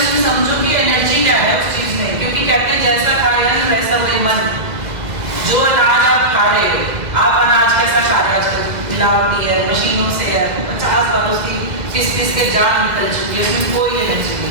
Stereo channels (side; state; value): left; late; 2.0 ms